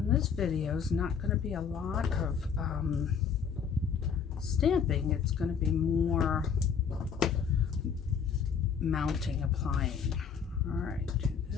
This video is not going to be a lot of stamping. It's going to be more mounting, applying. All right, do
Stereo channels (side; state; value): right; quieter; 6.8 dB